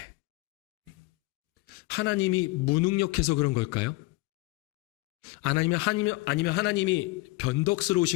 하나님이 무능력해서 그런 걸까요? 아니면 하나님이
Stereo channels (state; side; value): quieter; right; 22.1 dB